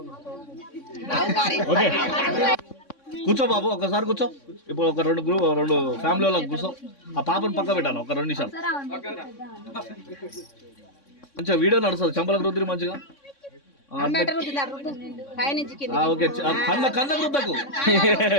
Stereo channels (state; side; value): late; right; 3.6 ms